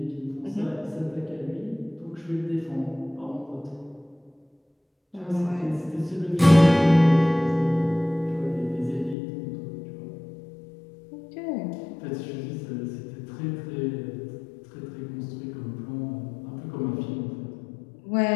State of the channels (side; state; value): right; drops out; at 9.2 s